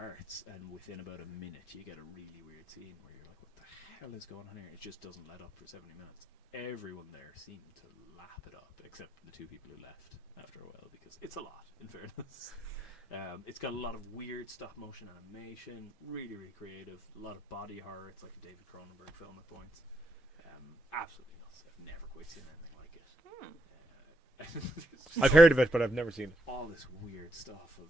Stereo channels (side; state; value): both; normal; correlation 0.79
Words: and within about a minute, you get a really weird scene where you're like, what the hell is going on here? It just doesn't let up for 70 minutes. Everyone there seemed to lap it up, except the two people who left after a while, because it's a lot, in fairness. It's got a lot of weird stop-motion animation, really, really creative, a lot of body horror. It's like a David Cronenberg film at points. Absolutely nuts. I've never quite seen anything like it. I've heard of it, but I've never seen it. All this weird stuff of,